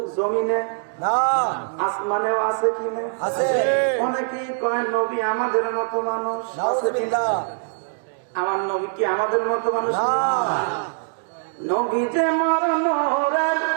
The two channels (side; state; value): left; silent; digital silence